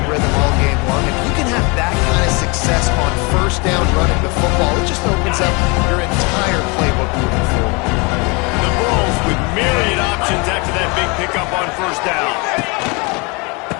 rhythm all game long. If you can have that kind of success on first down running the football, it just opens up your entire playbook moving forward. The Bulls with myriad options after that big pickup on first down.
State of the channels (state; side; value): quieter; right; 29.4 dB